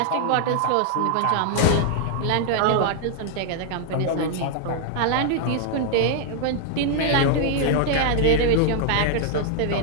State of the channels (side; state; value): both; different; correlation -0.01